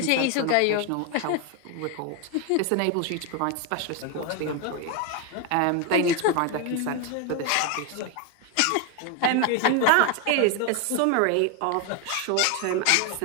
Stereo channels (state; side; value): different; both; correlation 0.01